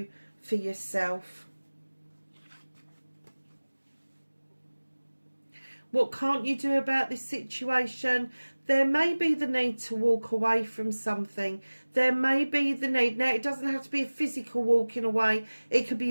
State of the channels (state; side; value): inverted; both; correlation -1.00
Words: for yourself. What can't you do about this situation? There may be the need to walk away from something. There may be the need. Now, it doesn't have to be a physical walking away. It could